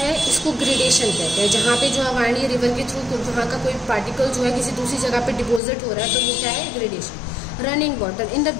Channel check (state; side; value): drops out; right; at 5.6 s